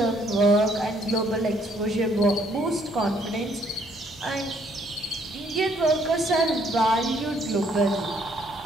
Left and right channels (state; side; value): normal; both; correlation 0.66